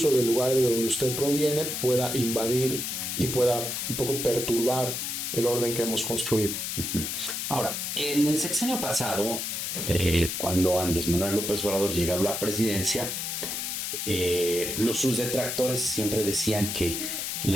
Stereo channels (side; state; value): left; noise; hiss, 3 dB below the sound